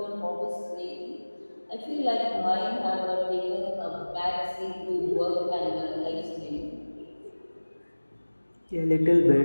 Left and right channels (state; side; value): inverted; both; correlation -1.00